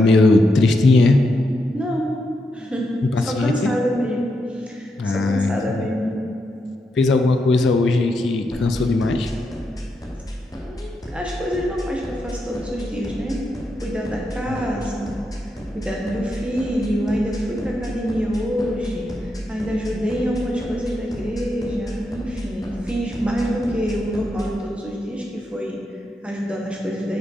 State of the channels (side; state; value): both; normal; correlation 0.83